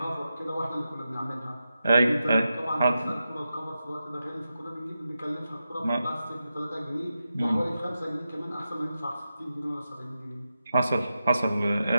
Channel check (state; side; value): inverted; both; correlation -0.90